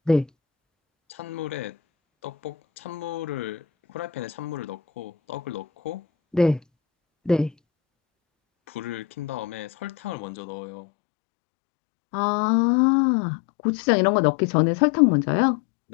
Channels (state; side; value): drops out; right; at 10.2 s